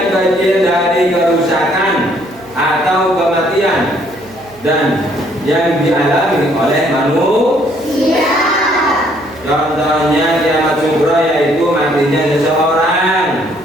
kecil dari kerusakan atau kematian dan yang dialami oleh manusia. Contohnya kiamat sughra yaitu matinya seseorang,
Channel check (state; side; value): noise; right; hum, 24 dB below the sound